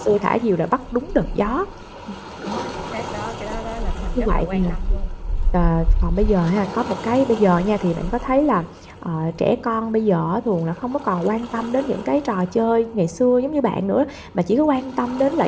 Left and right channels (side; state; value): both; identical; correlation 1.00